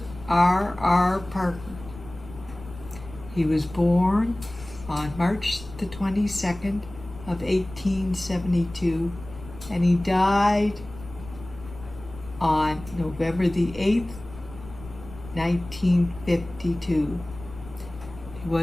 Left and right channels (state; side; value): noise; left; rumble, 16 dB below the sound